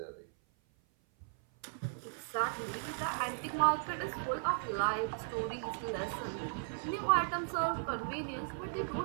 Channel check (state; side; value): silent; left; 53 dB below the other